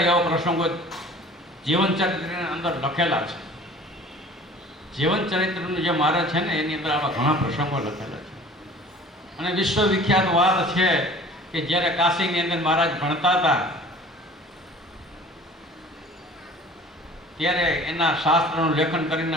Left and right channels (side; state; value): both; normal; correlation 0.46